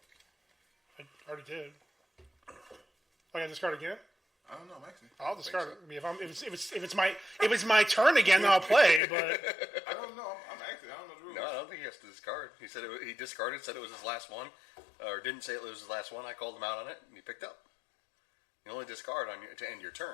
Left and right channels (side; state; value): right; drops out; at 9.0 s